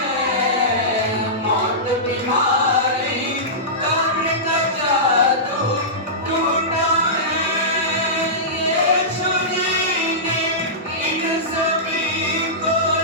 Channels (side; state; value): both; normal; correlation -0.17